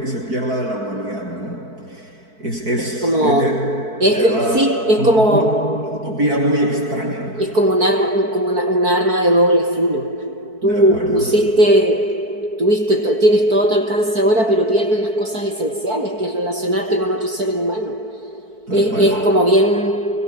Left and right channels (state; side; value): late; left; 4.6 ms